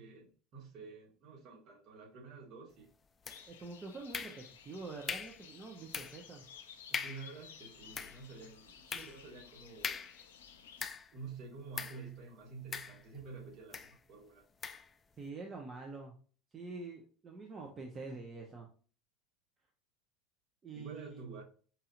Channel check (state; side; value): normal; both; correlation 0.51